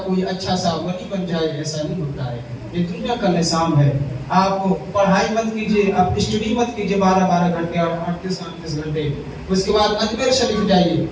کوئی اچھا سا ولی بن جائے, ایسا نہیں ہوتا ہے. یہ دنیا کا نظام ہے. آپ پڑھائی مت کیجئے, آپ اسٹڈی مت کیجئے 12 گھنٹے اور 38 گھنٹے. اس کے بعد اجمیر شریف جائیے,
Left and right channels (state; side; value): identical; both; correlation 1.00